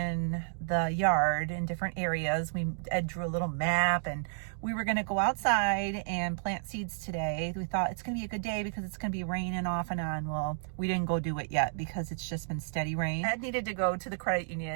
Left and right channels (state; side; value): silent; left; digital silence